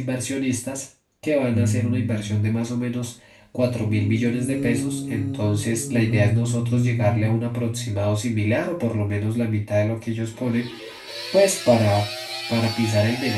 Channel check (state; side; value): identical; both; correlation 1.00